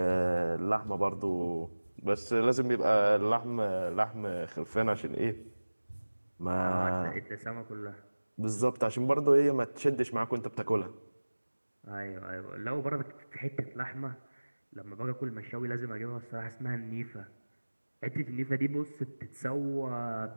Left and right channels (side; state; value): both; inverted; correlation -1.00